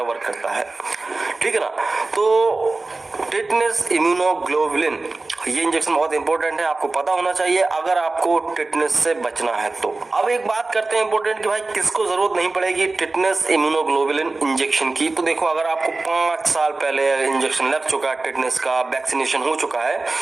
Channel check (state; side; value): quieter; left; 3.4 dB